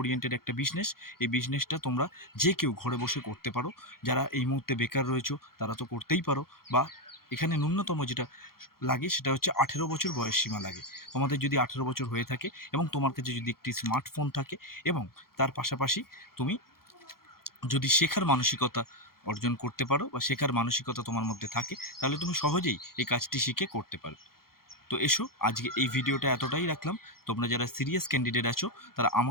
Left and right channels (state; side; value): late; right; 0.93 ms